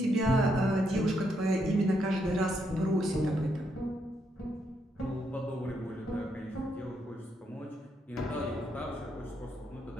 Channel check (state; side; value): normal; both; correlation 0.77